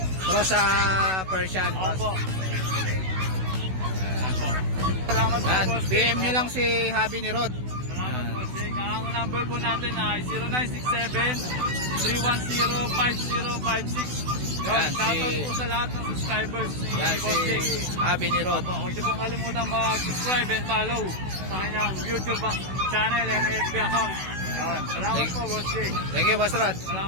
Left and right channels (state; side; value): late; left; 16 ms